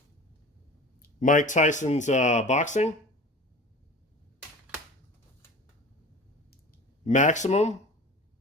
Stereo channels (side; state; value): both; normal; correlation 0.38